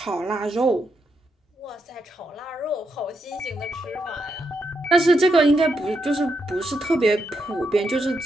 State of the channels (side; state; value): both; normal; correlation 0.81